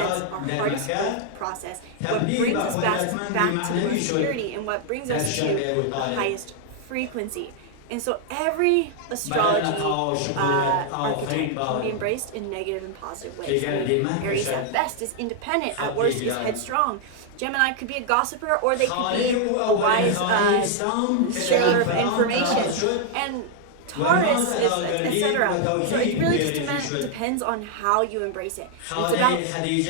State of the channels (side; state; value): both; different; correlation 0.00